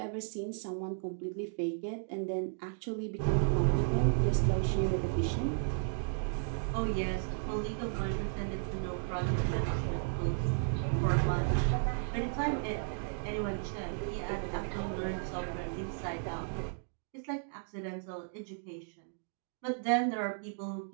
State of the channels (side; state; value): left; silent; digital silence